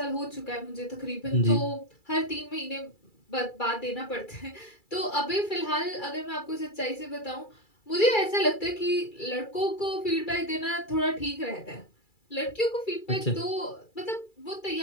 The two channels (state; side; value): late; right; 2.3 ms